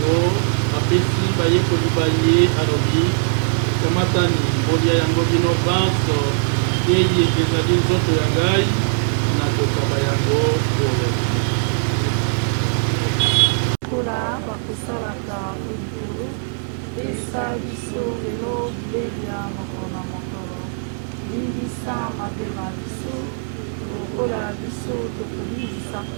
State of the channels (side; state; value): left; silent; digital silence